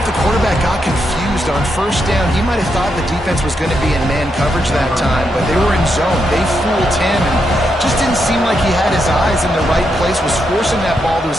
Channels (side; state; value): both; normal; correlation 0.82